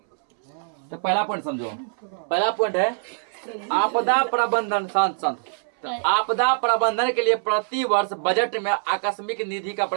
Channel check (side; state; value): left; silent; 63 dB below the other